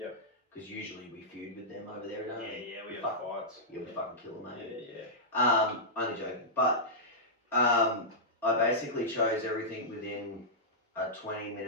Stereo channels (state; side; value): normal; both; correlation -0.12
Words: Because usually we feud with them over there, don't we? Yeah, we have fights. Yeah, we fucking kill them, mate. Yeah. Only joking. But I basically chose everything within a